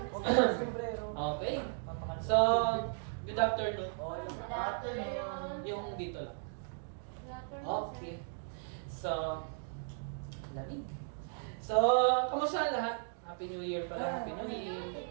Okay. So, good afternoon. Yung dito lang. Okay. So, lamig. So, kamusta lahat? Happy New Year pala, Happy New Year.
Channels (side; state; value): left; silent; digital silence